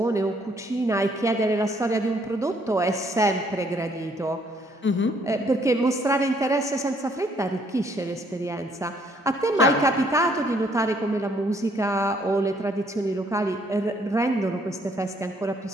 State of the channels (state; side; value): normal; both; correlation 0.66